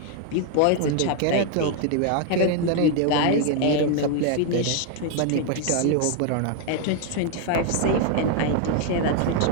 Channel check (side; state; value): both; different; correlation 0.00